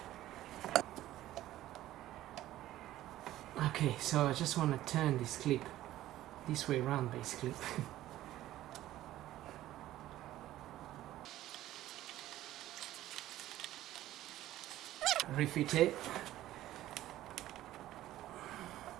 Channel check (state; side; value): quieter; left; 14.4 dB